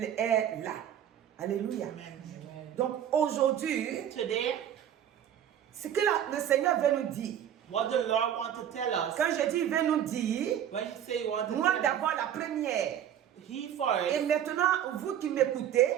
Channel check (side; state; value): left; quieter; 10.1 dB